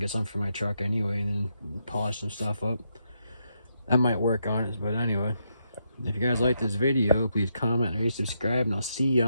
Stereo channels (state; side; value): inverted; both; correlation -0.80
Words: some for my truck anyway, and then polish some stuff up. That might work on it, but anyway. If you guys like this video, please comment, rate, subscribe, and I'll see you